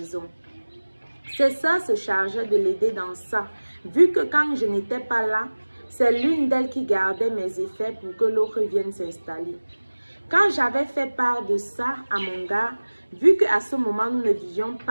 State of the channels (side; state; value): both; inverted; correlation -1.00